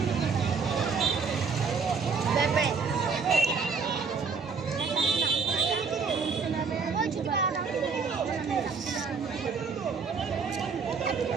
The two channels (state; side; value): quieter; left; 5.2 dB